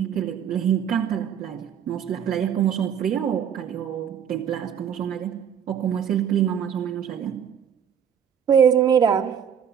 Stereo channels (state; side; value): quieter; left; 8.3 dB